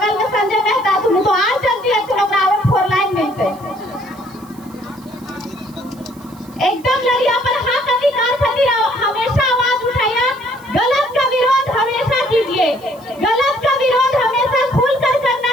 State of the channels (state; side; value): noise; right; hiss, 26 dB below the sound